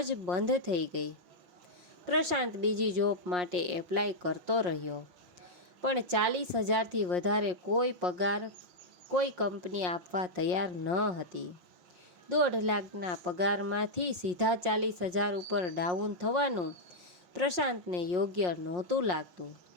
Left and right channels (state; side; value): late; left; 5.6 ms